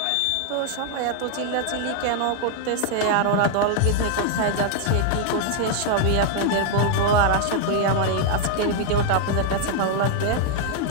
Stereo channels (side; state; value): both; different; correlation 0.00